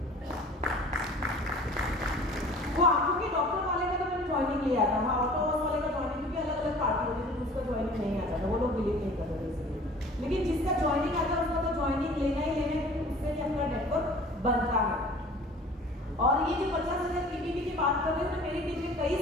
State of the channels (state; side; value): normal; both; correlation 0.46